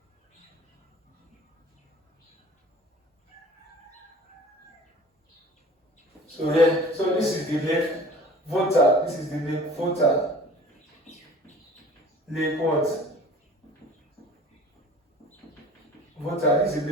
So here, so this is the lake voter. This is the lake voter. Lake what? Voter. This is the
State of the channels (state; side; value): normal; both; correlation 0.44